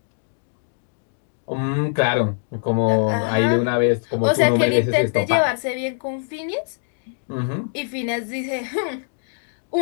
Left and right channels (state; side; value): silent; right; digital silence